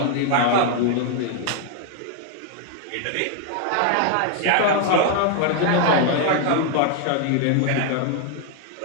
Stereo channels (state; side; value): different; both; correlation 0.00